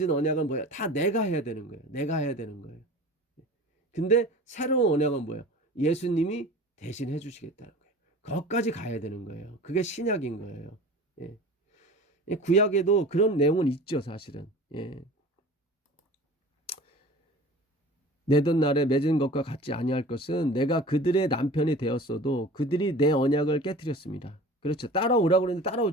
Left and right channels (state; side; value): normal; both; correlation 0.40